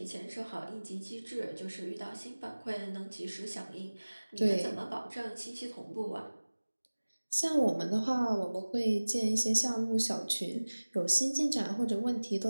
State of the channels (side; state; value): both; inverted; correlation -1.00